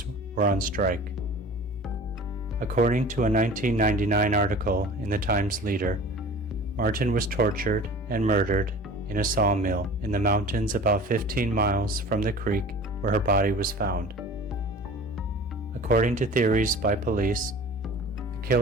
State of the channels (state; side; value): normal; both; correlation 0.41